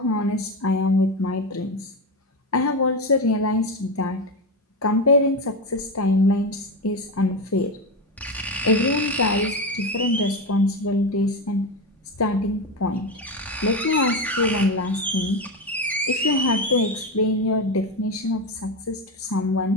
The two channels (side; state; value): both; normal; correlation 0.16